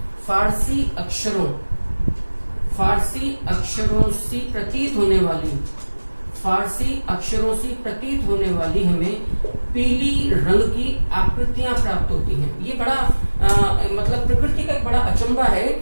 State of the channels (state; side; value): inverted; both; correlation -1.00